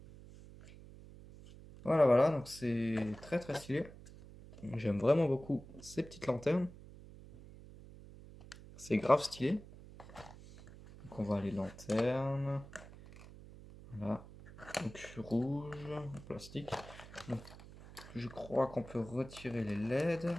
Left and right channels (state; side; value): noise; right; hum, 17 dB below the sound